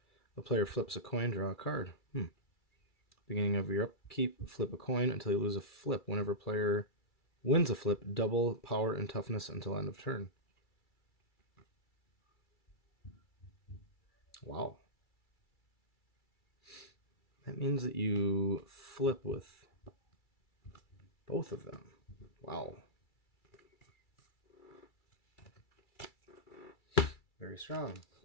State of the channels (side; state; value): right; late; 2.3 ms